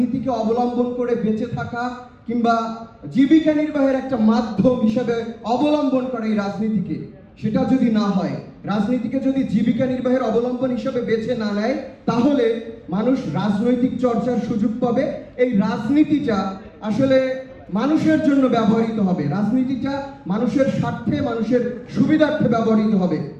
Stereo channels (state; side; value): identical; both; correlation 1.00